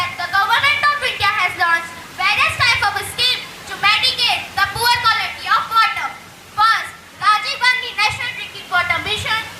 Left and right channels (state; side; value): identical; both; correlation 1.00